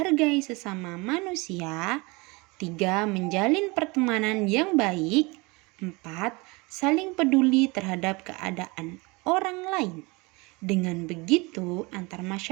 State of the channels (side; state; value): left; quieter; 25.9 dB